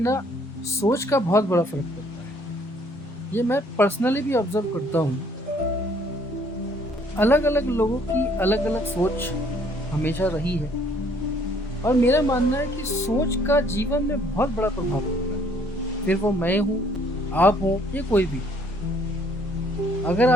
सोच का बहुत बड़ा फर्क पड़ता है। ये मैं पर्सनली भी ऑब्जर्व करता हूँ। अलग अलग लोगों की अलग अलग सोच हमेशा रही है और मेरा मानना है कि सोच का जीवन में बहुत बड़ा प्रभाव पड़ता है। फिर वो मैं हूँ, आप हो, या कोई भी। अगर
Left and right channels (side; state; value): both; normal; correlation 0.62